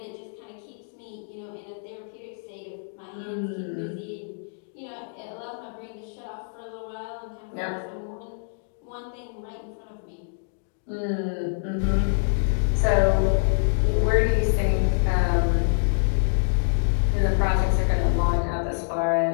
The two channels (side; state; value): right; silent; digital silence